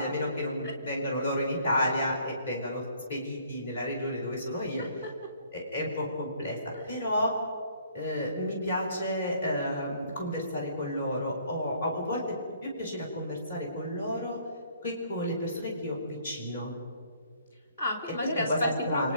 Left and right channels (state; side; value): inverted; both; correlation -0.61